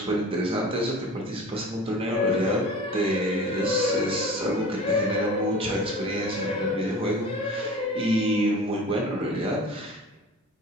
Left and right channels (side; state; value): both; normal; correlation 0.39